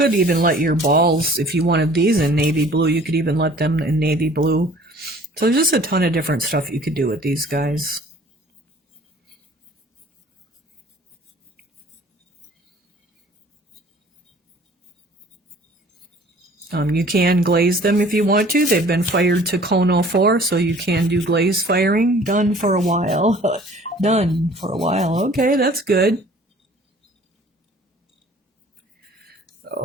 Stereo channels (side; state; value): both; normal; correlation 0.51